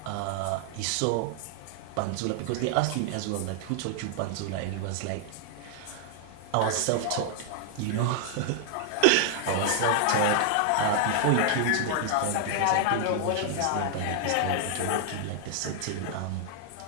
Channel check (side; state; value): both; different; correlation 0.00